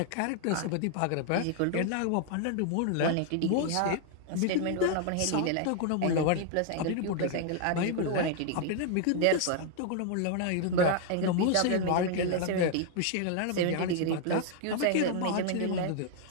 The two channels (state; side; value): different; both; correlation 0.00